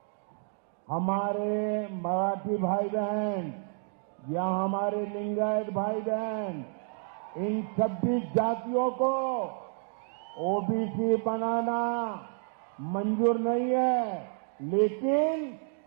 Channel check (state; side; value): silent; left; 58 dB below the other